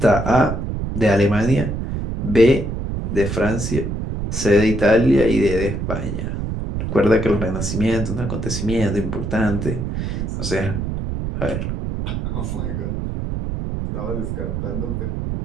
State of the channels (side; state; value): right; noise; rumble, 3 dB below the sound